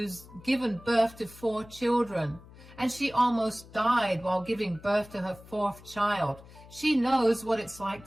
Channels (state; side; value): noise; left; hum, 20 dB below the sound